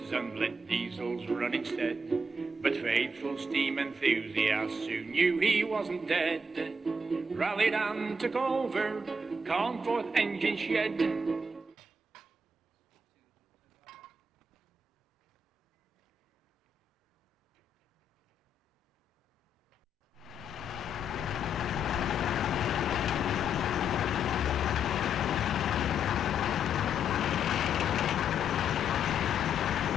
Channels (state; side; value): normal; both; correlation 0.76